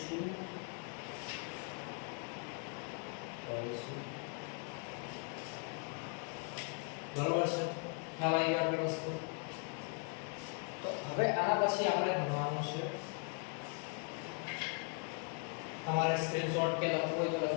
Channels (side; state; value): right; quieter; 35.7 dB